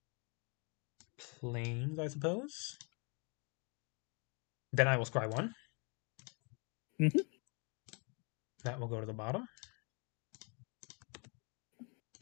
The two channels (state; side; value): quieter; right; 35.6 dB